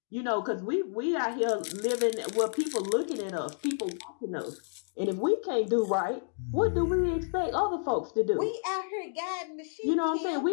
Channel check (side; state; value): right; silent; digital silence